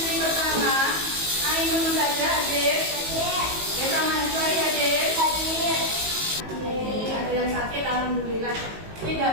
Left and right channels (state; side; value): late; left; 18 ms